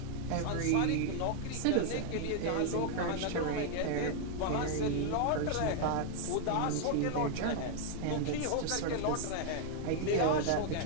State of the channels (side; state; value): both; different; correlation 0.00